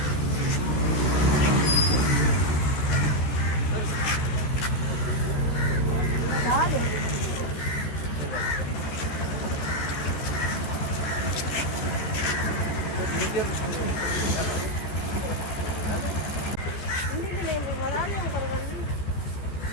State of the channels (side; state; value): right; late; 14 ms